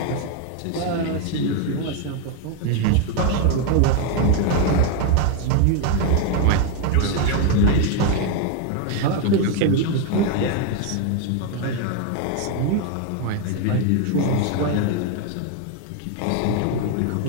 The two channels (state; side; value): different; both; correlation 0.01